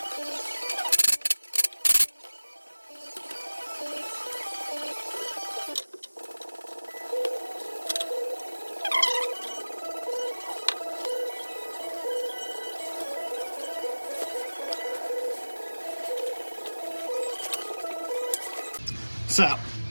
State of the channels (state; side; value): inverted; both; correlation -1.00